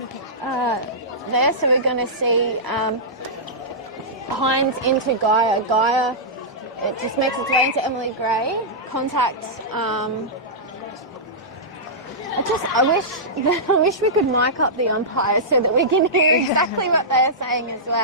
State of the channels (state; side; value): normal; both; correlation -0.14